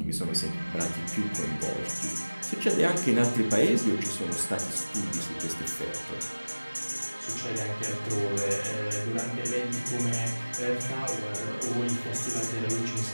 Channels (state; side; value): inverted; both; correlation -1.00